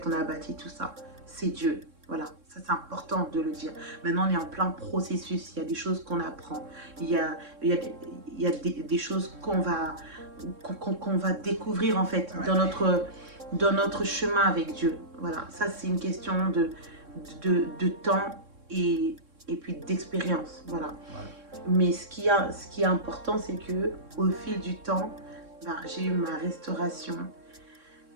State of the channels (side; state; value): left; late; 3.6 ms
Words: on a bâti tout ça. C'est Dieu. Voilà, ça c'est important de le dire. Maintenant, on est en plein processus. Il y a des choses qu'on apprend. Il y a des choses qu'on va découvrir, en fait, Ouais. dans notre chemin avec Dieu. Voilà, ça, c'est une question de temps et puis d'expérience. Voilà. Ouais. Mais ce qui est important, c'est que au fil du temps, ben, j'ai eu ma restauration.